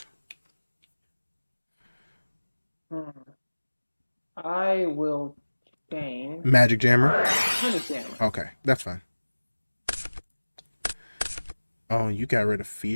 I will change. Magic Jammer? Magic Jammer. Okay, that's fine. Oh, you got rid of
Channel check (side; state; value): both; inverted; correlation -1.00